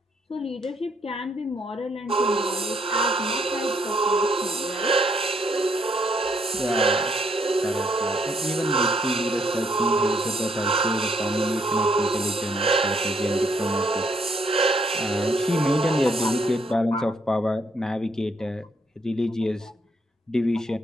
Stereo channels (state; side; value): normal; both; correlation 0.71